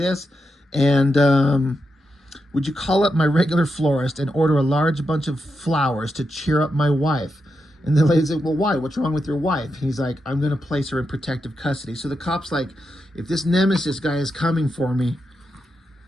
and would you call up my regular florist and order a large bunch of flowers to cheer up my wife? And the lady's like, well, why? What's wrong with your wife? He's like, I'm going to place her in protective custody. So the cop's like, if this Nemesis guy is coming for me,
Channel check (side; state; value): both; normal; correlation 0.86